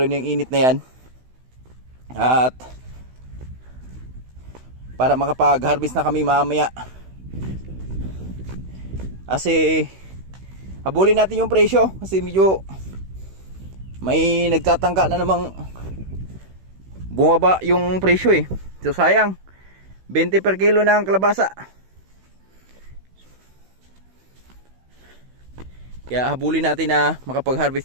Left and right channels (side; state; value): left; late; 16 ms